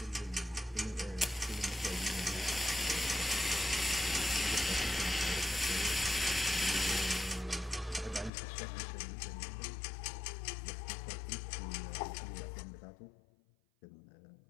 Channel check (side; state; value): right; drops out; at 8.3 s